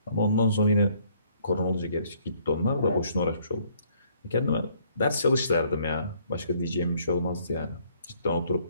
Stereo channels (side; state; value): both; inverted; correlation -0.64